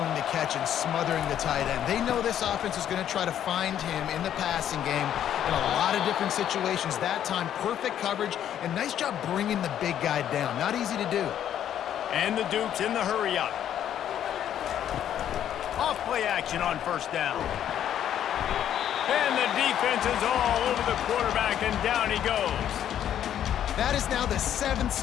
the catch and smothering the tight end. They know this offense is going to try to find him in the passing game in a lot of different situations. That time, perfect coverage, and nice job bringing the big guy down. Not easy to do. And the Dukes in the hurry-up. Off-play action on first down. And the defense is all over the quarterback, and down he goes. That is now the 7th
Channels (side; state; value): right; quieter; 10.4 dB